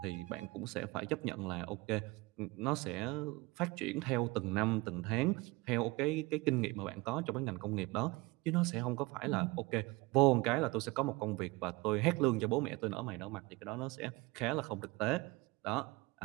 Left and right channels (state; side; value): quieter; left; 23.4 dB